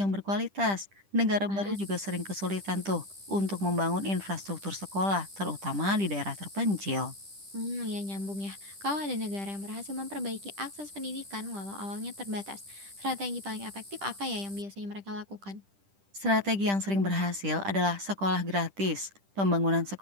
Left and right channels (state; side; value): late; left; 10 ms